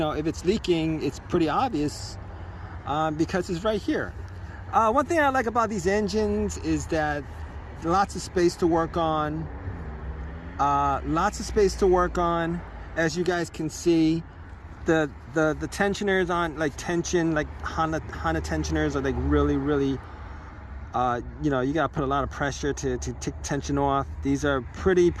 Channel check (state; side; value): identical; both; correlation 1.00